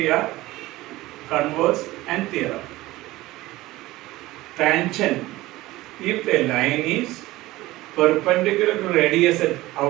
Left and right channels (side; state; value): left; quieter; 18.1 dB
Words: are converse and theorem. Tangent, if a line is perpendicular to radius at